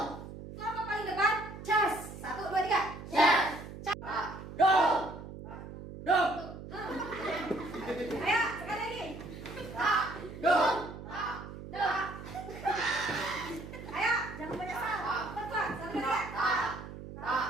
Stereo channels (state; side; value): noise; right; hum, 12 dB below the sound